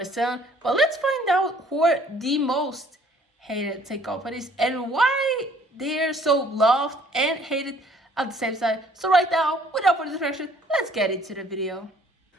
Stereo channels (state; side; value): normal; both; correlation 0.58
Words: But let's find out who are the most hated tech companies and why they're so loved and hated at the same time. So right now, without further distraction, let's get into the video.